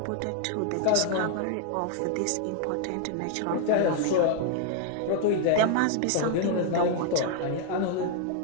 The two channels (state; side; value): different; both; correlation 0.00